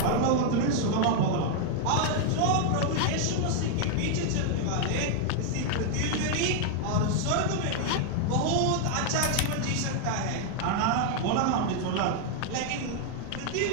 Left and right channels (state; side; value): different; both; correlation 0.00